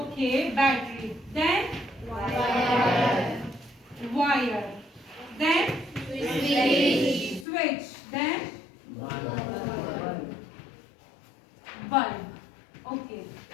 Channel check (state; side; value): drops out; right; at 7.5 s